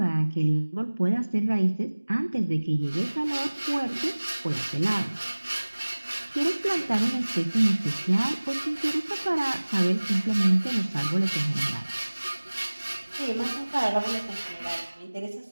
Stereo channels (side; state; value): both; inverted; correlation -1.00